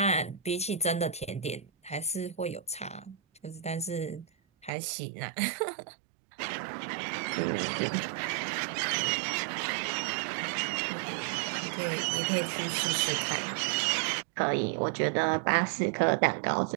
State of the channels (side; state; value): left; drops out; at 4.7 s